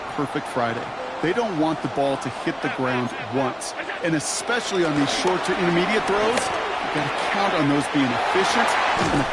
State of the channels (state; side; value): identical; both; correlation 1.00